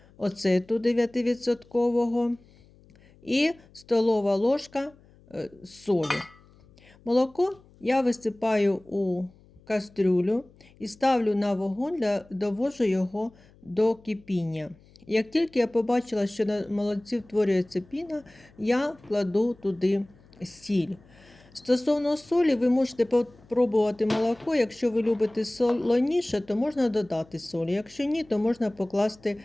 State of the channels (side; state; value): left; noise; hum, 27 dB below the sound